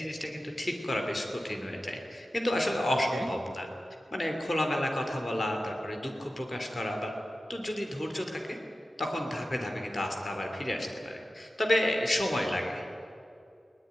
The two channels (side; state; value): both; normal; correlation 0.94